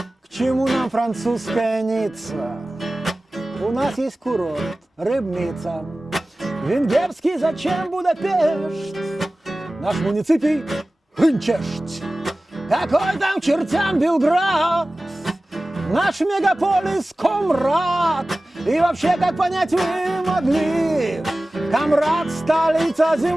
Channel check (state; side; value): normal; both; correlation 0.97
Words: К чему нам французская Ницца? У нас есть курорт, Рыбница. Венгерский зачем Будапешт? Наш муниципий Хынчешт. Какой там к чертям Белград? Наш мегаполис Комрад. И вообще, как понять вы могли? Комрад — столица